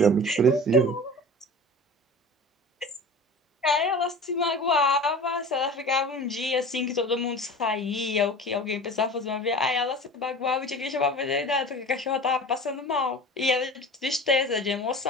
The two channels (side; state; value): both; normal; correlation 0.37